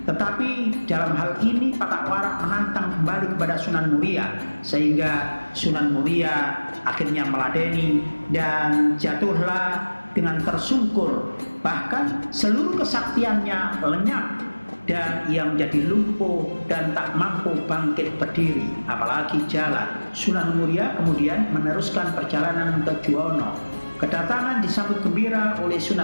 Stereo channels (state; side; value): inverted; both; correlation -1.00